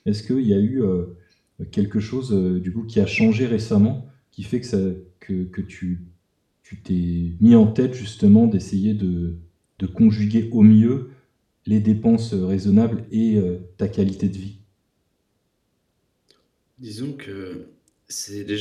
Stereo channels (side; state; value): both; identical; correlation 1.00